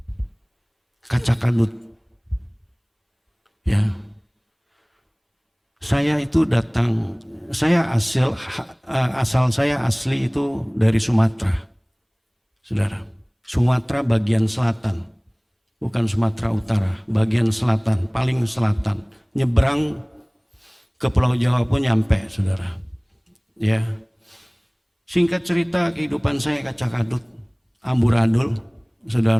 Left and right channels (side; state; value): both; identical; correlation 1.00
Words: kaca kadut. Ya, saya itu datang, asal saya asli itu dari Sumatera, saudara. Sumatera bagian selatan, bukan Sumatera Utara, bagian selatan, paling selatan. Nyebrang ke Pulau Jawa pun nyampe, saudara. Ya, singkat cerita kehidupan saya kaca kadut, amburadul,